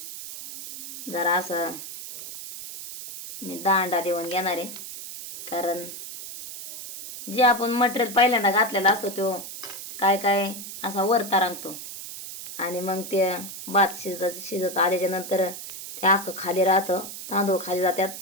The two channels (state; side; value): noise; right; hiss, 10 dB below the sound